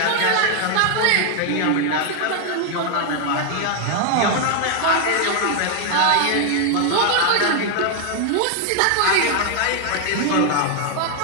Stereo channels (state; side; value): different; both; correlation 0.00